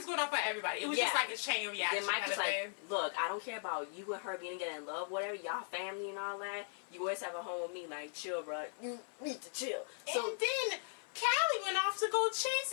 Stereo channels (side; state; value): right; silent; 52 dB below the other